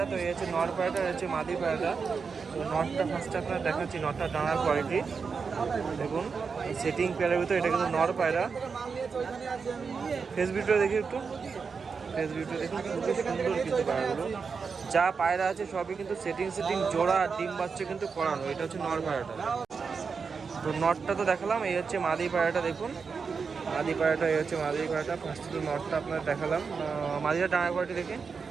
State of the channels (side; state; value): left; quieter; 5.4 dB